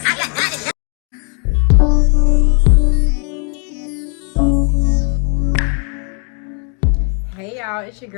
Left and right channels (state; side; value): quieter; right; 38.6 dB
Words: I got it. Hey y'all, it's your